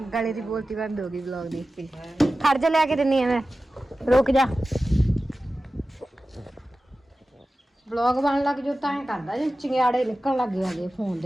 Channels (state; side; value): normal; both; correlation 0.95